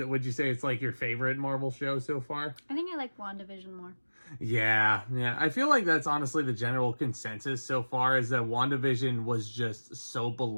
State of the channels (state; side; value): inverted; both; correlation -1.00